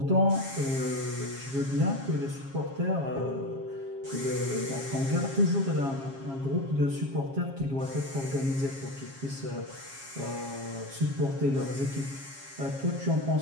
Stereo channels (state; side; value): late; left; 7.4 ms